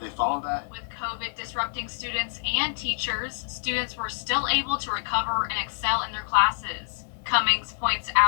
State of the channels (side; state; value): right; silent; digital silence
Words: follow that. With COVID disrupting students and teachers, students were still able to recover and excel in their classes. Cummings points